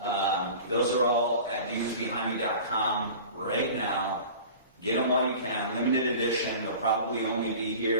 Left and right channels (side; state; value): both; inverted; correlation -0.39